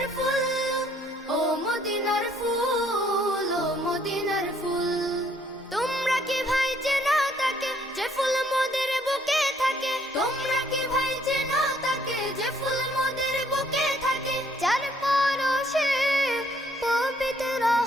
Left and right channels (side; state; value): both; normal; correlation 0.65